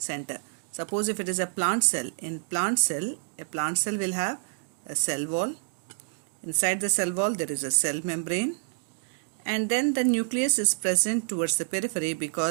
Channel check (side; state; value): left; silent; digital silence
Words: Suppose if it is a plant cell, in plant cell, a plant cell will have a cell wall. Inside the cell wall, there is a cell membrane, and then the nucleus is present towards the periphery